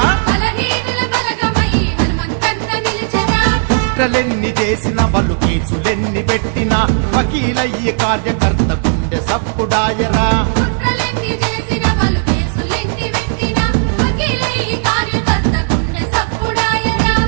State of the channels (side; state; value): left; silent; digital silence